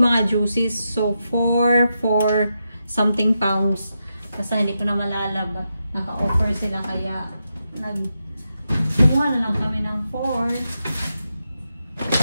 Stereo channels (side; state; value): both; inverted; correlation -0.86